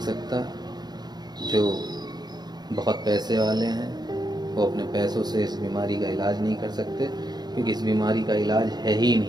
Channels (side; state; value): left; late; 0.20 ms